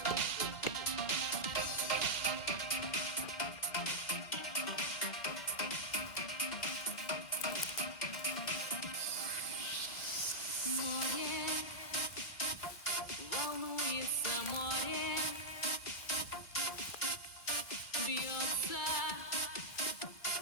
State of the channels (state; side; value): late; right; 2.3 ms